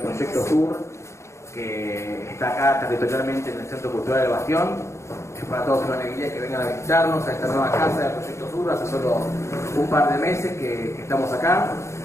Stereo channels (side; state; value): right; late; 0.14 ms